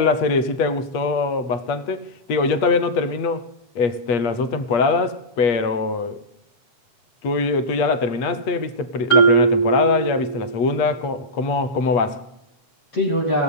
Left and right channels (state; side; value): late; right; 8.4 ms